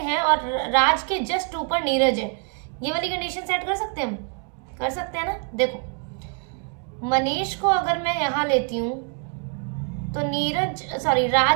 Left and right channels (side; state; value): left; quieter; 38.6 dB